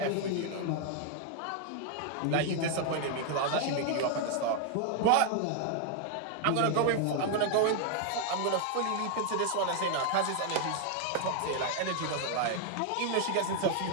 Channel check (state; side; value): different; both; correlation 0.00